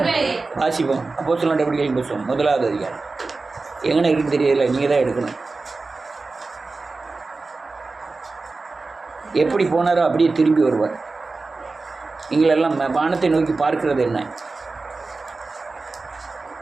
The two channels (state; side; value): quieter; left; 3.7 dB